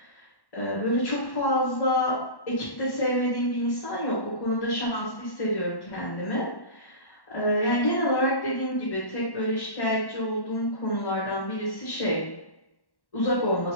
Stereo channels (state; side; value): late; right; 1.1 ms